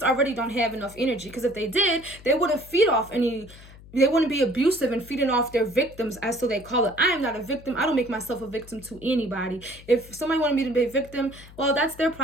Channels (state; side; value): noise; left; hum, 20 dB below the sound